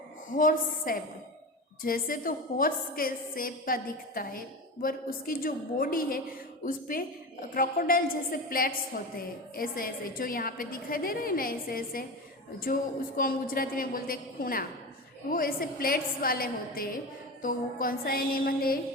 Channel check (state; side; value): normal; both; correlation 0.25